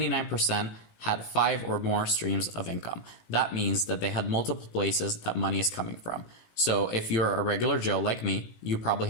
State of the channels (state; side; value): late; right; 18 ms